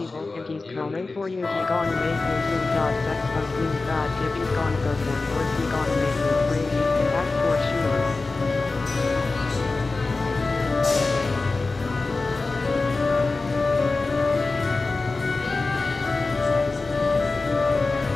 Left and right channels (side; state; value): right; quieter; 3.6 dB